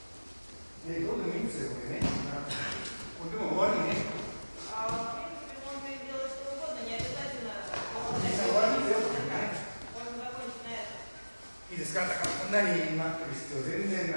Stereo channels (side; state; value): both; inverted; correlation -1.00